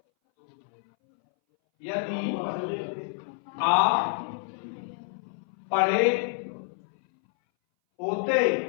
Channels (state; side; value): silent; right; 59 dB below the other